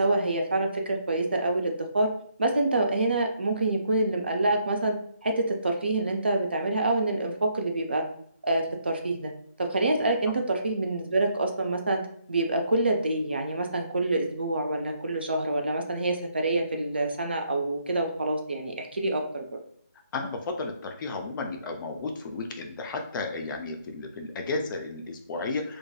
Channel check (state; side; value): inverted; both; correlation -0.71